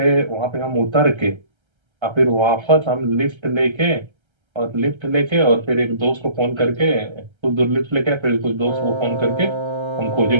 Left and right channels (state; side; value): late; left; 1.3 ms